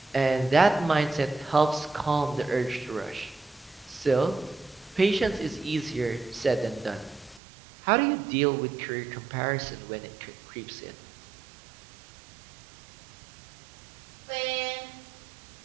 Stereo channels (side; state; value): left; drops out; at 7.4 s